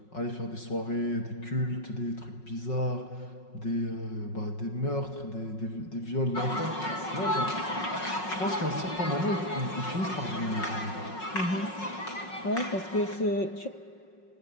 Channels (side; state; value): right; late; 5.4 ms